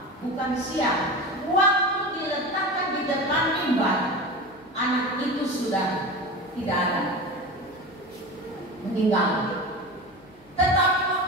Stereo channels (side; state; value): left; noise; hum, 28 dB below the sound